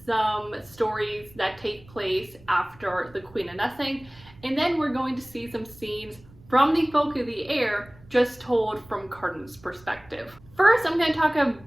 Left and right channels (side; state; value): right; noise; rumble, 24 dB below the sound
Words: some stories that take place after The Queen of Nothing, and then we're going to see some scenes from the Folk of the Air just told from Cardan's perspective. First, I'm going to talk